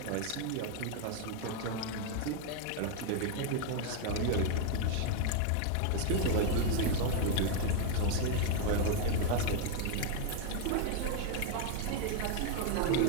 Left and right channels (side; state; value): both; different; correlation 0.00